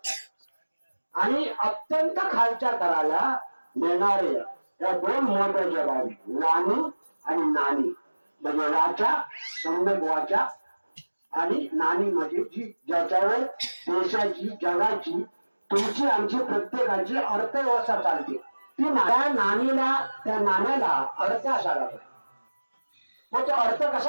आणि अत्यंत खालच्या तराला नेणारे या 2 महत्वाच्या बाबी, वाणी आणि नाणी. म्हणजे वाचा, सम्यक वाचा, आणि नाणी म्हणजे जी ज्याच्यावर देशाची, जगाची, तुमची, आमची, प्रत्येकाची अर्थव्यवस्था चालते. ती त्या नाणीला, त्या नाण्याला अर्थ असायला पाहिजे. तो अर्थ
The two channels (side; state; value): both; inverted; correlation -1.00